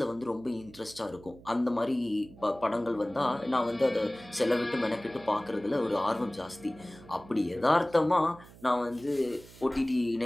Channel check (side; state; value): right; noise; hum, 21 dB below the sound